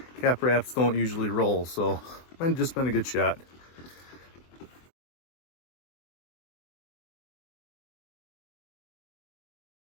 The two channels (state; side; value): late; right; 24 ms